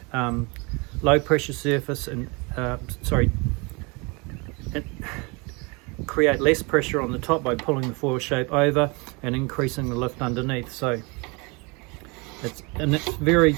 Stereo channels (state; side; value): quieter; left; 29.0 dB